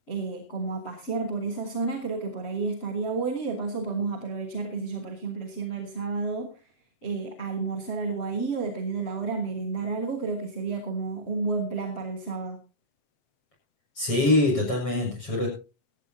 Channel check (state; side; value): late; right; 7.2 ms